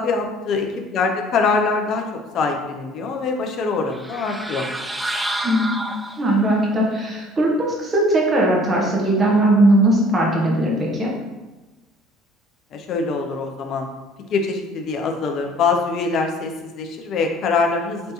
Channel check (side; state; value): both; normal; correlation 0.54